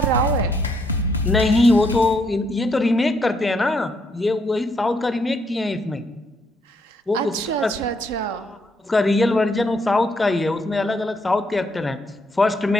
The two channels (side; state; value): both; normal; correlation 0.73